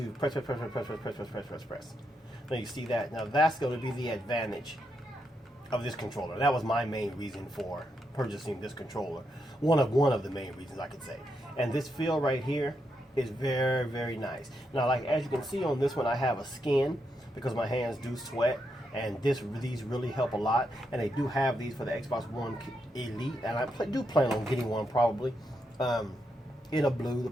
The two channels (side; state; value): both; normal; correlation 0.82